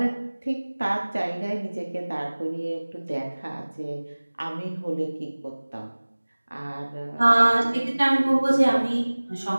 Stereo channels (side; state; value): both; inverted; correlation -1.00